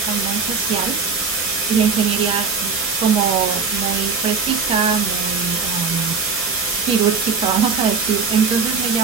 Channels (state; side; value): quieter; left; 5.2 dB